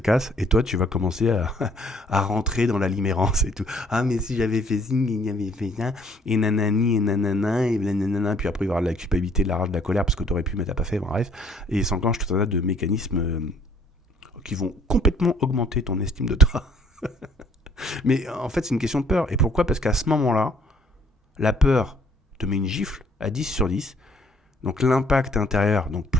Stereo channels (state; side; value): normal; both; correlation 0.61